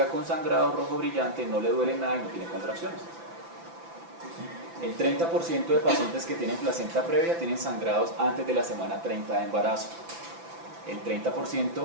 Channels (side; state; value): left; late; 5.9 ms